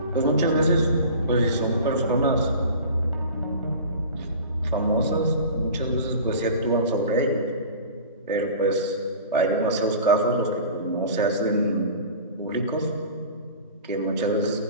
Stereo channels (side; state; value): both; inverted; correlation -0.38